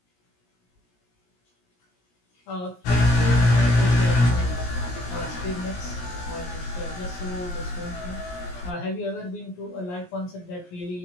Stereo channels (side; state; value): right; late; 17 ms